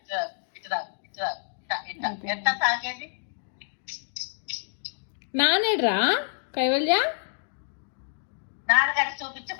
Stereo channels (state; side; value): silent; right; digital silence